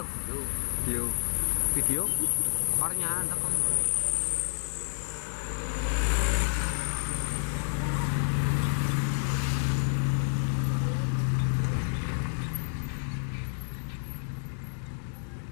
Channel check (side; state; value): right; silent; 58 dB below the other